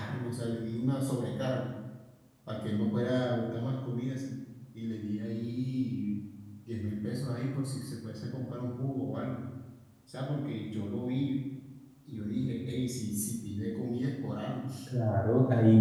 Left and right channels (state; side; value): identical; both; correlation 1.00